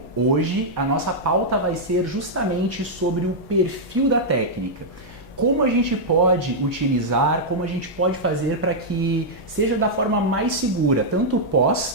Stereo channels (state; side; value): normal; both; correlation -0.06